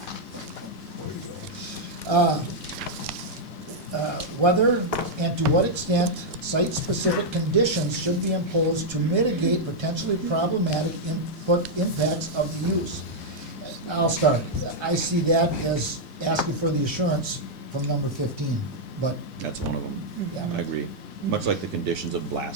Whether and to what extent site-specific conditions should be imposed to mitigate potentially problematic impacts of the use. I'll start. I see that as asking for the assurance from number 15, but, That's one of them. Yeah. I agree. Much like the conditions of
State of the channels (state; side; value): normal; both; correlation -0.04